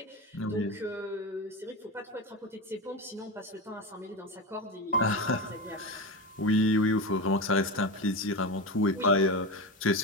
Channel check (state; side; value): normal; both; correlation 0.20